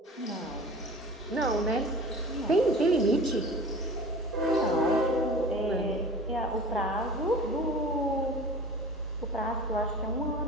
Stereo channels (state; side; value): normal; both; correlation 0.41